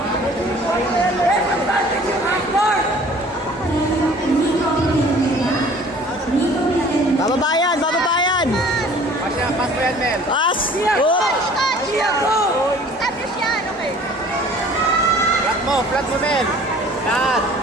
Bababayan, bababayan. Pass mo yan, Mel. Pass. Pia, go! Oh. Pia, go! Establish yan, okay. Flat mo, Mel. Flat.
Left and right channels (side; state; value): both; normal; correlation 0.50